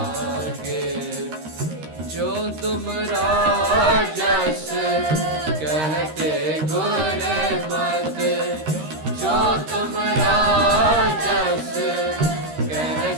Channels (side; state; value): left; late; 13 ms